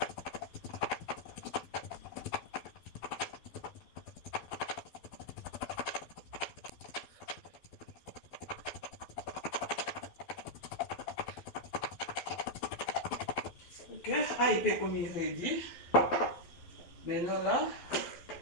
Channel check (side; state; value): right; late; 12 ms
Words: Ok, ah, il peut comme il ready. Maintenant là,